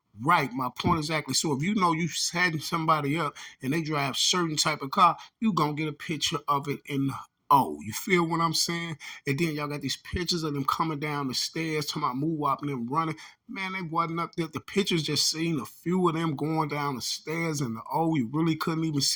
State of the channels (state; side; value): identical; both; correlation 1.00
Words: Right, my point exactly. So if you know you setting somebody up and they drive certain type of car, you gonna get a picture of it in the O. You feel what I'm saying? And then y'all got these pictures of them coming down the stairs, talking about move up and them running. Man, they wasn't up there. The pictures just seen a few of them going down the stairs in the O. You really couldn't even